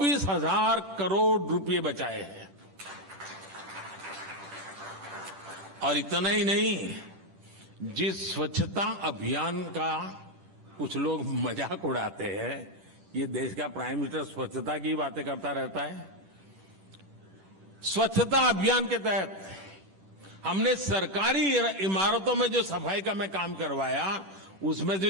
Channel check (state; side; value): late; left; 10 ms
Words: करोड़ रुपए बचाए हैं। और इतना ही नहीं, जिस स्वच्छता अभियान का कुछ लोग मजाक उड़ाते हैं, ये देश का प्राइम मिनिस्टर स्वच्छता की बातें करता रहता है। स्वच्छता अभियान के तहत हमने सरकारी इमारतों में जो सफाई का मैं काम करवाया, उसमें